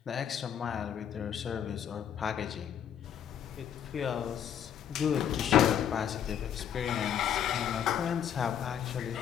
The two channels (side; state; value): right; quieter; 9.3 dB